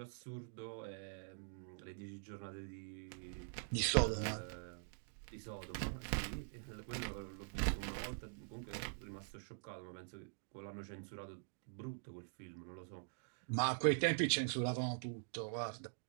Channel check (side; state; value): left; silent; digital silence